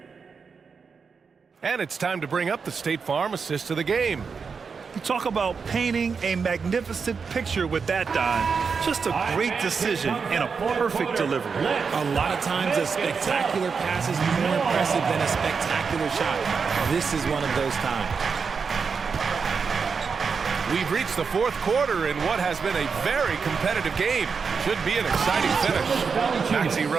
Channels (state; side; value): quieter; left; 5.5 dB